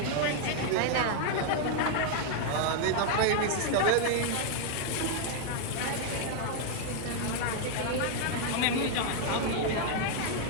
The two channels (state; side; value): different; both; correlation 0.00